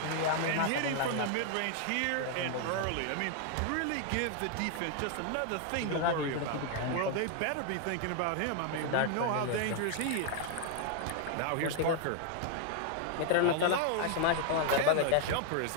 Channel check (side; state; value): both; different; correlation 0.00